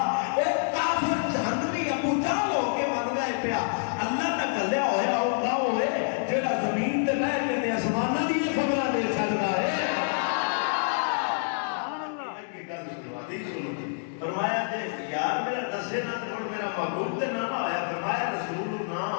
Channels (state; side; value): silent; right; digital silence